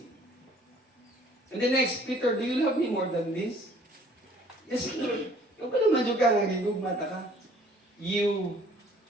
And the next, Peter, do you love me more than this? Yes, Lord. Yung pala madyo ka nga gigugmata ka. You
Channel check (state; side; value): normal; both; correlation 0.56